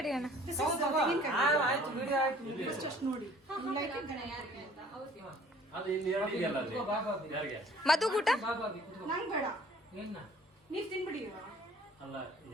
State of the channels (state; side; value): normal; both; correlation 0.54